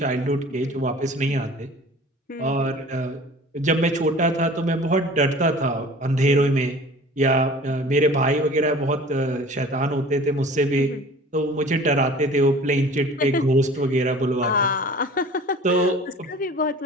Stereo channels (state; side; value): normal; both; correlation 0.44